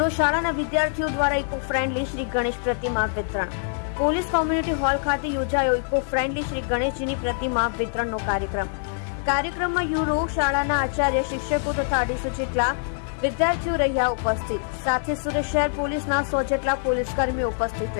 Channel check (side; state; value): right; silent; digital silence